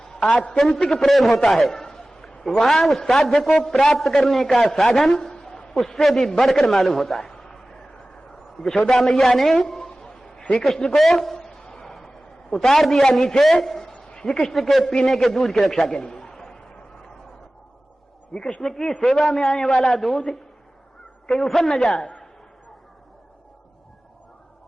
आत्यंतिक प्रेम होता है, वहां उस साध्य को प्राप्त करने का साधन उससे भी बढ़कर मालूम होता है। यशोदा मैया ने श्री कृष्ण को उतार दिया नीचे, श्री कृष्ण के पीने के दूध की रक्षा के लिए। श्री कृष्ण की सेवा में आने वाला दूध कहीं उफन न जाए,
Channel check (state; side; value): normal; both; correlation 0.97